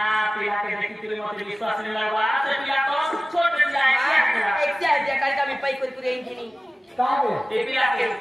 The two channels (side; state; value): both; normal; correlation 0.97